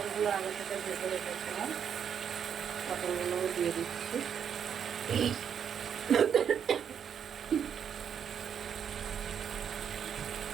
আগে থেকে ভেজে রেখেছিলাম পটলগুলোও দিয়ে দিচ্ছি।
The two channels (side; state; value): left; quieter; 8.0 dB